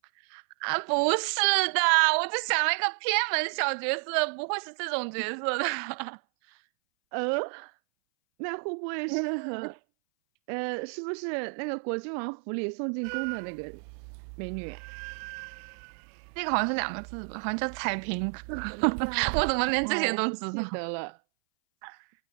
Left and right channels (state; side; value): silent; left; 58 dB below the other